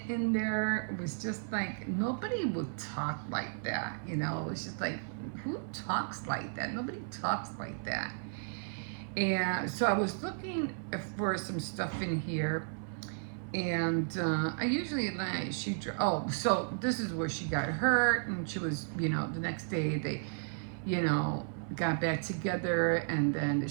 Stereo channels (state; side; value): silent; left; 55 dB below the other